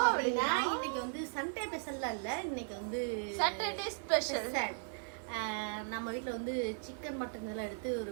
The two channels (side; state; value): left; silent; 53 dB below the other